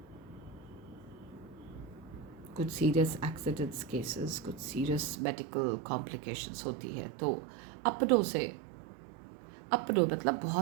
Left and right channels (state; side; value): drops out; left; at 5.2 s